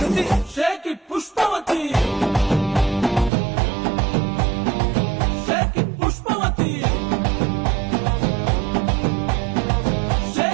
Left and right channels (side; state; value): left; drops out; at 3.3 s